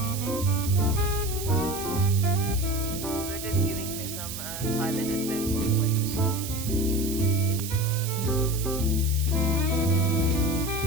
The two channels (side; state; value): right; noise; hiss, 8 dB below the sound